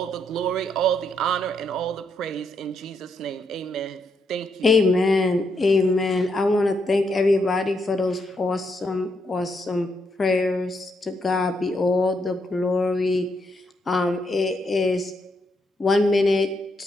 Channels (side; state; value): both; normal; correlation 0.78